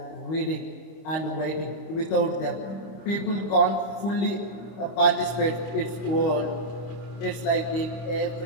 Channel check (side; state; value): right; late; 26 ms